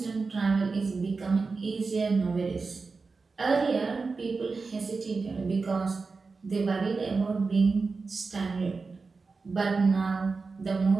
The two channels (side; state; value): left; quieter; 4.3 dB